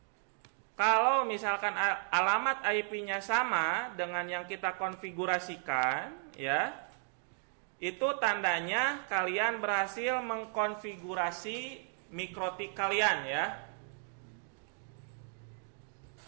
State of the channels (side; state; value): left; silent; 55 dB below the other